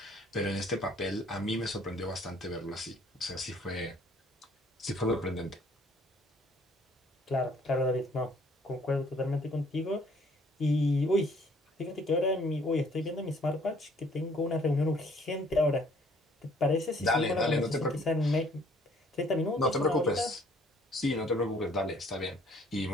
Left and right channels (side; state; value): both; normal; correlation 0.60